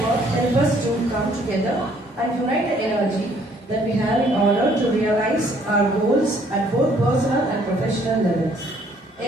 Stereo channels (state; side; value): normal; both; correlation 0.63